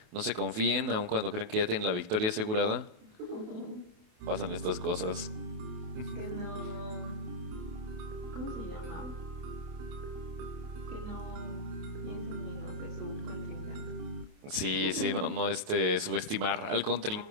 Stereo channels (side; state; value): left; late; 28 ms